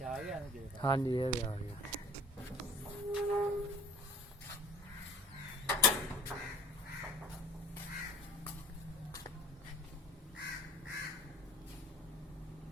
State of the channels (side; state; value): both; normal; correlation 0.46